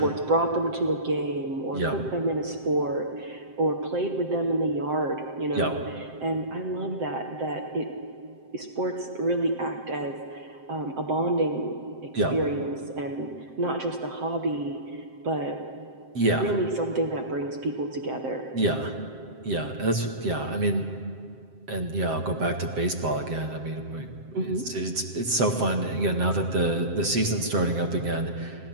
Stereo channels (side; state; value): left; late; 7.7 ms